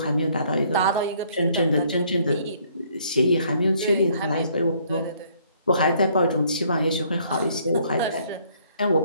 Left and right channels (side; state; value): both; inverted; correlation -0.64